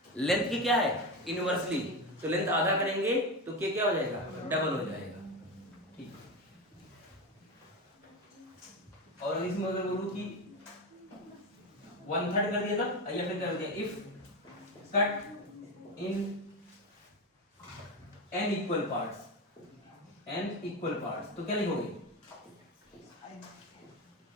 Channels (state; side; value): normal; both; correlation 0.18